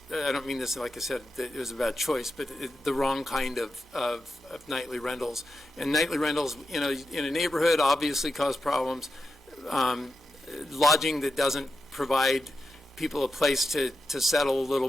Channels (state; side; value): normal; both; correlation 0.89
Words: I don't mean this like I said that it was a bad choice, but the wrong kind of nightly rentals. And nightly rentals in a neighborhood obviously cause problems. Lodging that doesn't provide people a place to settle a little